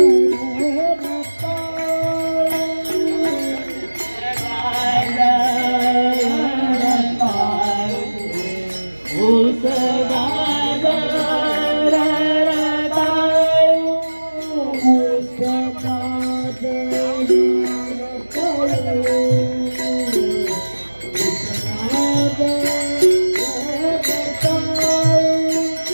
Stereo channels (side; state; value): both; inverted; correlation -1.00